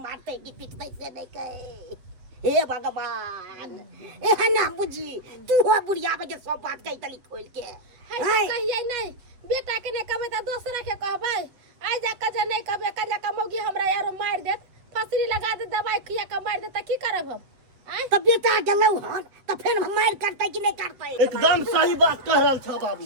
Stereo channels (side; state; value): left; late; 7.8 ms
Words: मारते की पीटते से नहीं कहे हे भगवान एहन ना बुझी तू हो बुढ़िया बजे सब बात कही तली खोल के कहिए नहीं बेटा के नहीं कहबे त दोसरा के कहबै आई जा के जे नहीं कहबे कल्ला का मौगी हमरा यार मार देत फसरी लगा दे दवाई खिया के मार दे त की करब हम तो बेटा गेलौ हन तो फिर मार करते कि नहीं करते एकदम सही बात कह रहल छ